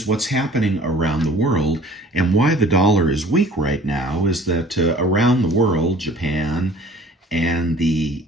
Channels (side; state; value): both; normal; correlation 0.50